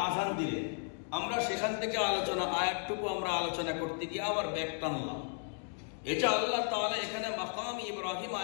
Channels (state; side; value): silent; right; 55 dB below the other